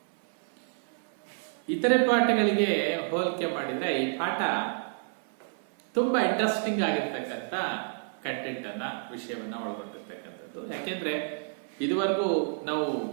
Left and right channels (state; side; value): silent; left; 56 dB below the other